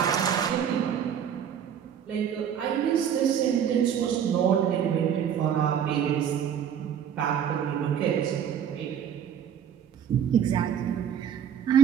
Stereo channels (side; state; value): left; quieter; 8.8 dB